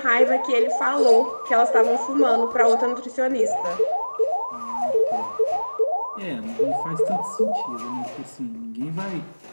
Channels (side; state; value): both; inverted; correlation -1.00